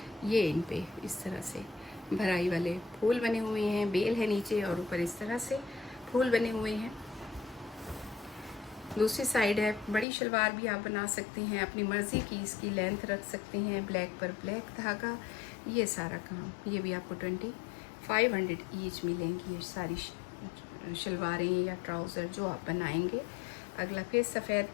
ये इन पे इस तरह से भराई वाले फूल बने हुए हैं, बेल है नीचे और ऊपर इस तरह से फूल बने हुए हैं। दूसरी साइड है, बड़ी शलवार भी आप बना सकते हैं, अपनी मर्ज़ी की इसकी लेंथ रख सकते हैं, ब्लैक पर ब्लैक धागा। ये सारा काम, ये भी आपको 2500 ईच मिलेंगी। ये सारी शलवारें या ट्राउज़र जो आप बनाएंगे। अगला फिर सफ़ेद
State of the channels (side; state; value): right; drops out; at 10.1 s